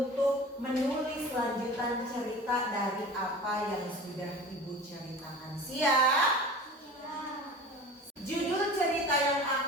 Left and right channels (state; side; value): normal; both; correlation 0.37